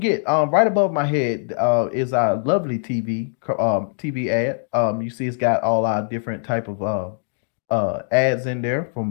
right above my head is our lovely TV ad. You see, it's got all our different type of ads in there, from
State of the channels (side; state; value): right; silent; 63 dB below the other